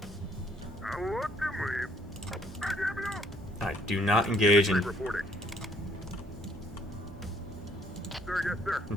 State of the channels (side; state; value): both; normal; correlation 0.65